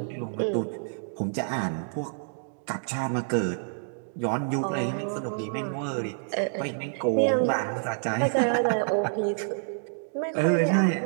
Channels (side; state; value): left; silent; digital silence